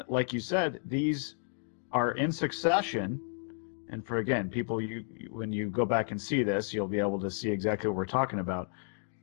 like you said, these are in succession. And for, again, people, when you go back and see this, you'll be able to see exactly what we're talking about.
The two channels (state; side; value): silent; right; digital silence